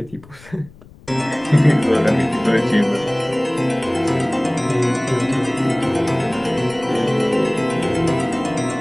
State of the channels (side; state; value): left; noise; rumble, 23 dB below the sound